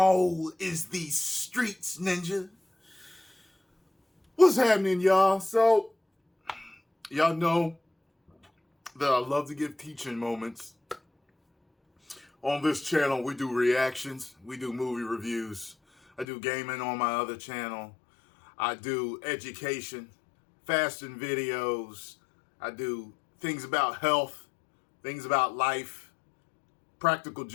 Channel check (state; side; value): drops out; right; at 16.2 s